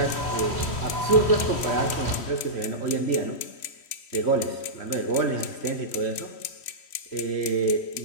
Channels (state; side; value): late; right; 3.1 ms